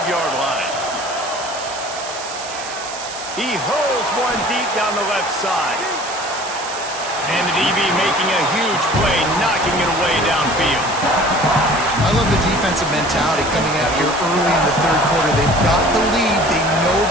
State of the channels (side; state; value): right; noise; hiss, 11 dB below the sound